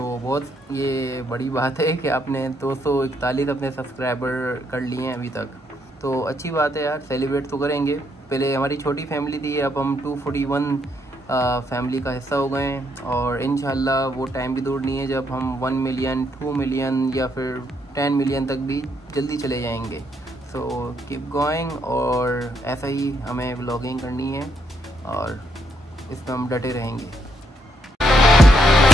बहुत ये बड़ी बात है कि आपने 241 अपने सब्सक्राइबर कर लिए हैं अभी तक, तो अच्छी बात है यार, सेलिब्रेट तो करेंगे। पहले हमारी छोटी फैमिली थी, अब हम 241 फैमिली का हिस्सा हो गए हैं और इंशाल्लाह वो टाइम भी दूर नहीं है जब हम 1 मिलियन 2 मिलियन या फिर 10 मिलियन तक भी जल्दी चले जाएंगे। सो कीप गोइंग, और ऐसा ही हमें व्लॉगिंग करनी है और इसमें हम डटे रहेंगे।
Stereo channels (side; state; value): both; normal; correlation 0.75